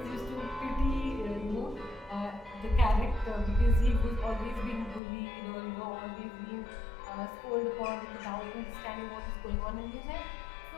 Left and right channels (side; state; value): right; drops out; at 5.0 s